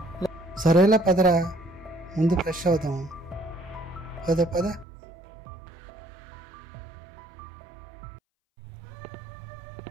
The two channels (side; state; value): left; drops out; at 4.9 s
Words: సరేలా పదరా, ముందు ఫ్రెష్ అవుతాం. పద పద.